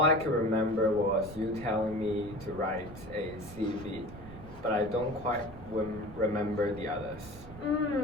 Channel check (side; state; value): right; noise; rumble, 15 dB below the sound